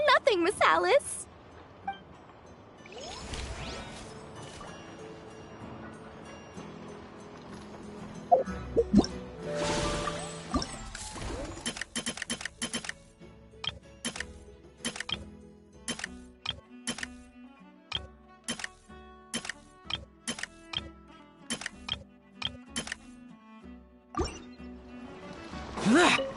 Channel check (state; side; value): identical; both; correlation 1.00